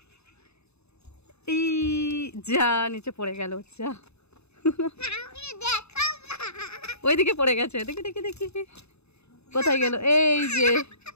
এই যা নিচে পড়ে গেল, যা ওইদিকে পড়ে গেছে, দেখি দেখি দেখি কোথায় গেল। এই যে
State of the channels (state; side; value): late; right; 0.80 ms